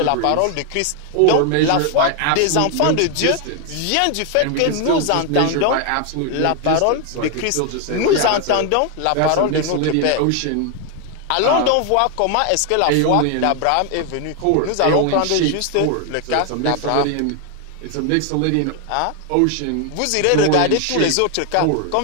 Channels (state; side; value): different; both; correlation 0.00